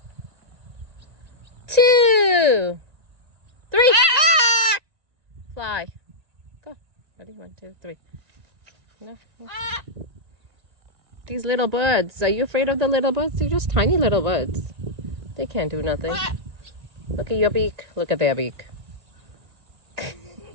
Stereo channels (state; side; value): late; left; 1.8 ms